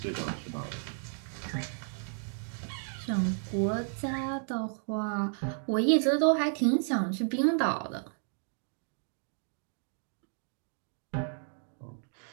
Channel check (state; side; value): silent; left; digital silence